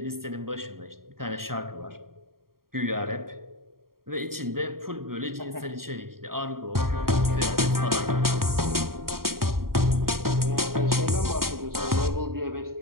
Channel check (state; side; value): late; left; 0.93 ms